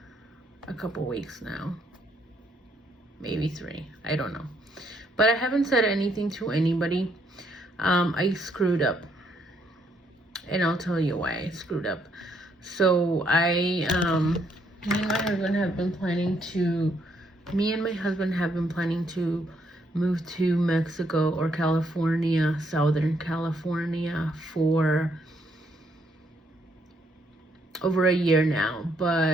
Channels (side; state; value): both; normal; correlation 0.72